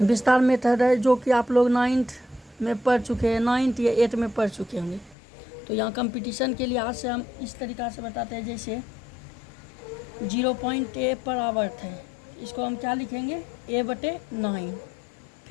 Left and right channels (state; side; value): drops out; right; at 5.2 s